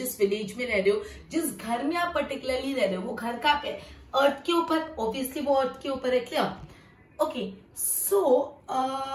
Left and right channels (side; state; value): both; identical; correlation 1.00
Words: विलेज में रह रहे हो, जिस घर में आप पर्टिकुलरली रह रहे हो, वो घर कहाँ पे है? अर्थ के ऊपर. ऑब्वियसली वो अर्थ के ऊपर है. क्लियर? ओके, सो